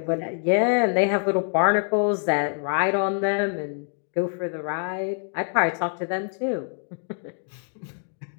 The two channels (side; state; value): right; silent; 59 dB below the other